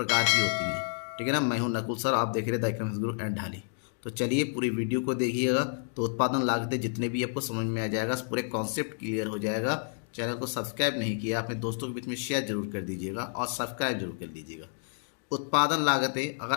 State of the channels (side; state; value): right; silent; digital silence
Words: की होती हैं। ठीक है ना। मैं हूं नकुल सर, आप देख रहे हैं द इकोनॉमिक्स गुरु एंड ढाली। तो चलिए पूरी वीडियो को देखिएगा तो उत्पादन लागतें जितने भी आपको समझ में आ जाएगा, पूरे कॉन्सेप्ट क्लियर हो जाएगा। चैनल को सब्सक्राइब नहीं किया अपने दोस्तों के बीच में शेयर जरूर कर दीजिएगा और सब्सक्राइब जरूर कर दीजिएगा। उत्पादन लागतें अगर